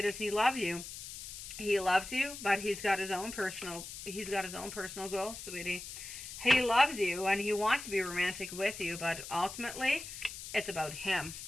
does he love you? He loves you, but he's got his own personal goals, sweetie. He loves you and he wants to be romantic with you, but ultimately it's about him.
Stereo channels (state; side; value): noise; left; hiss, 10 dB below the sound